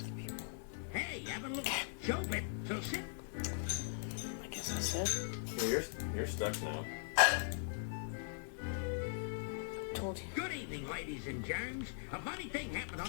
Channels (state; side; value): silent; right; 51 dB below the other